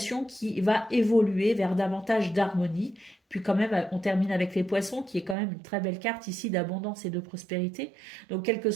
qui va évoluer vers davantage d'harmonie. Puis quand même, on termine avec les poissons, qui est quand même une très belle carte ici d'abondance et de prospérité. Donc, quelle que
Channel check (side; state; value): left; drops out; at 5.4 s